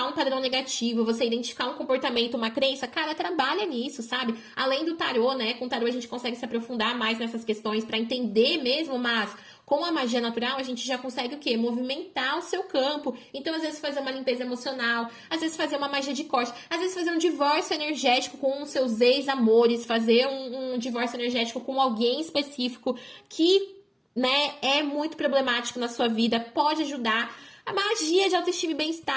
um padrão negativo, você identificar um comportamento, uma crença, cara, trabalha nisso, sabe? Além do tarô, né? Com o tarô a gente consegue se aprofundar mais nessas questões para entender mesmo, mas com a magia natural a gente já consegue o quê? Movimentar o seu campo. Então, às vezes, fazer uma limpeza emocional, às vezes fazer uma magia de corte, às vezes fazer um divórcio energético com os seus ex-amores, fazer um divórcio energético com alguém específico que, né, é muito problemático na sua vida, pode ajudar. A magia de autoestima e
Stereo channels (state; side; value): identical; both; correlation 1.00